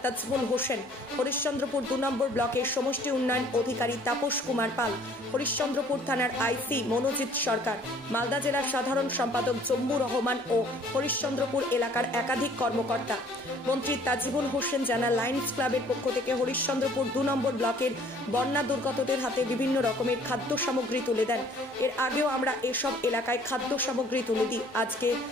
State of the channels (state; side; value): normal; both; correlation 0.55